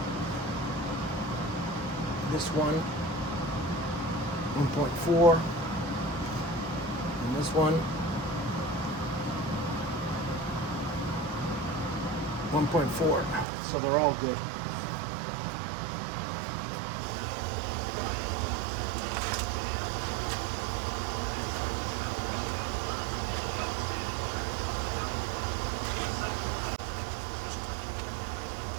This one, 1.4, and this one, 1.4, so they're all good.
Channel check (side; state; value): left; drops out; at 13.5 s